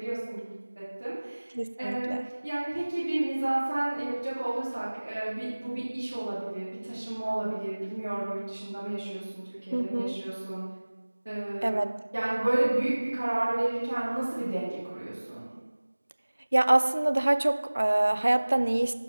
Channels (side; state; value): both; inverted; correlation -1.00